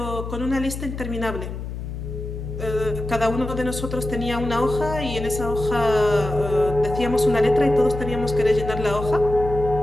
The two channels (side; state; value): left; noise; hum, 7 dB below the sound